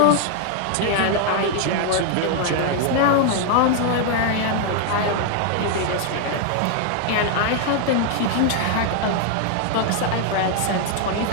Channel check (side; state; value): both; different; correlation 0.00